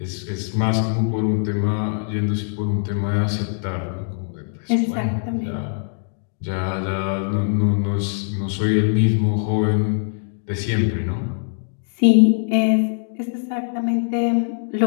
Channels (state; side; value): silent; right; digital silence